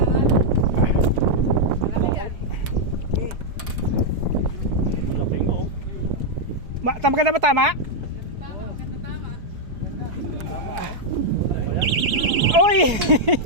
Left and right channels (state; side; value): late; left; 4.6 ms